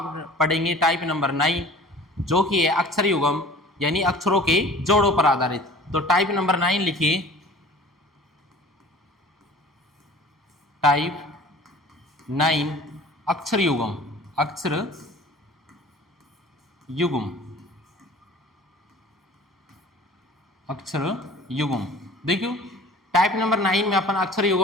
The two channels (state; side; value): normal; both; correlation 0.45